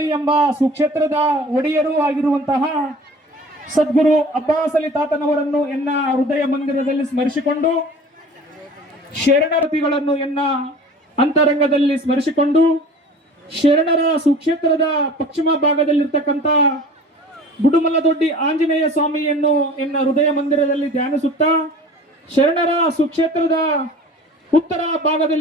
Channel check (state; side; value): normal; both; correlation 0.43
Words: ಎಂಬ ಸುಕ್ಷೇತ್ರದ ಒಡೆಯರೂ ಆಗಿರುವಂತಹ ಸದ್ಗುರು ಅಬ್ಬಾಸ್ ಅಲಿ ತಾತನವರನ್ನು ಎನ್ನ ಹೃದಯ ಮಂದಿರದಲ್ಲಿ ಸ್ಮರಿಸಿಕೊಂಡು, ಶರಣರತಿಗಳನ್ನು ಎನ್ನ ಅಂತರಂಗದಲ್ಲಿ ಸ್ಮರಿಸಿಕೊಂಡು, ಶರಣರ ಸುಕ್ಷೇತ್ರದ ಪಶ್ಚಿಮ ಭಾಗದಲ್ಲಿರ್ತಕ್ಕಂಥ ಬುಡುಮಲದೊಡ್ಡಿ ಆಂಜನೇಯ ಸ್ವಾಮಿಯನ್ನು ಎನ್ನ ಹೃದಯ ಮಂದಿರದಲ್ಲಿ ಧ್ಯಾನಿಸುತ್ತಾ, ಶರಣರ ಸುಕ್ಷೇತ್ರದ ಉತ್ತರ